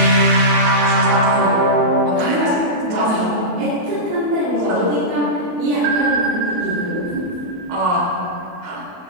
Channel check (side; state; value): left; late; 28 ms